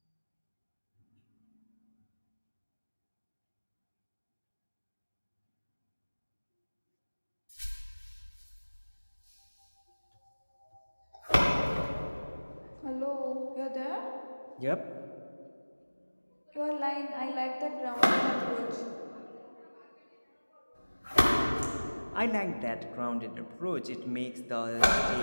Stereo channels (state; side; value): inverted; both; correlation -1.00